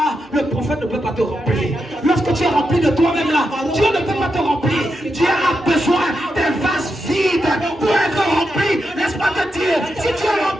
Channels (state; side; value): normal; both; correlation 0.86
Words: le prophète ne peut pas te remplir. Lorsque tu es rempli de toi-même là, Dieu ne peut pas te remplir. Dieu a besoin des vases vides pour être rempli. Laisse-moi te dire, si tu es